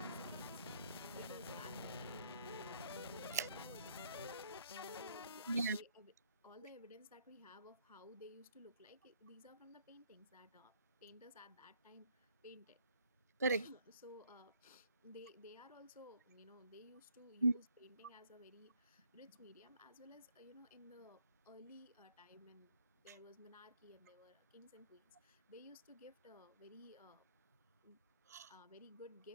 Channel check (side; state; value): both; inverted; correlation -0.65